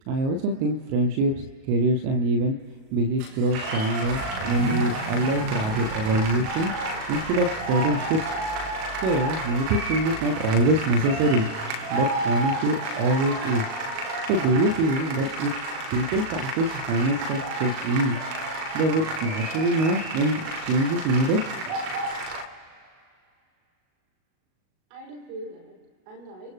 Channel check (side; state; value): left; late; 37 ms